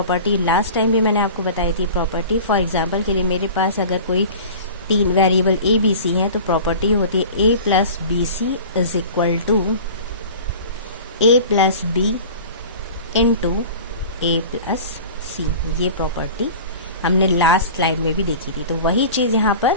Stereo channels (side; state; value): both; inverted; correlation -0.38